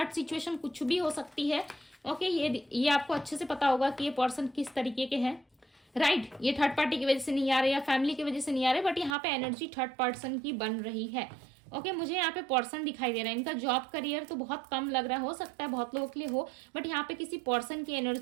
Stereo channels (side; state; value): left; drops out; at 9.2 s